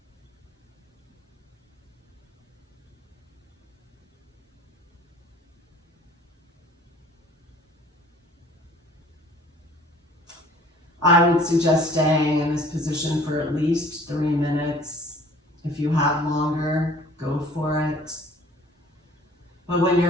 I would suggest staying in this position for at least 3 minutes. If you have longer, go for it. But when you're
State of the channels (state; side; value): normal; both; correlation 0.52